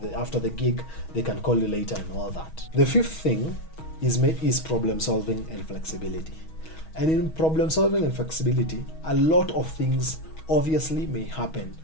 after the gig, they can call you later and all that. The fifth thing is problem solving and flexibility. And in problem solving and flexibility, a lot of things obviously may happen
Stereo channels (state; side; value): late; right; 6.3 ms